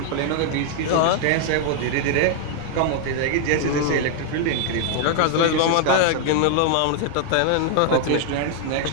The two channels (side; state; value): both; different; correlation 0.00